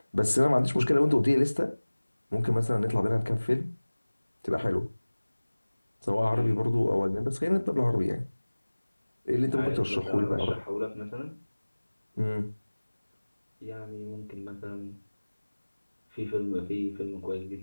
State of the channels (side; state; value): both; inverted; correlation -1.00